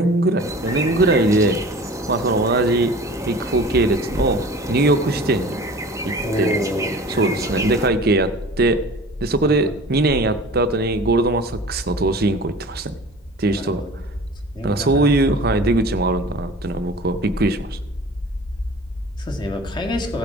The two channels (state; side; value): normal; both; correlation 0.41